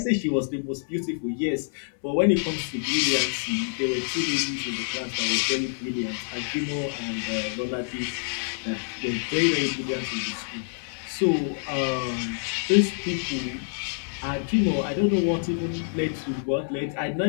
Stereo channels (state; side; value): silent; right; 60 dB below the other